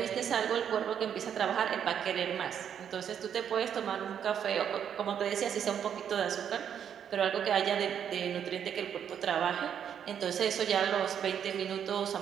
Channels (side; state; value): left; quieter; 8.6 dB